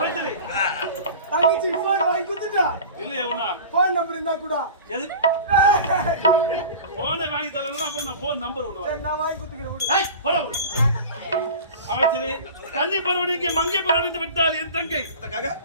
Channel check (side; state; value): both; inverted; correlation -0.37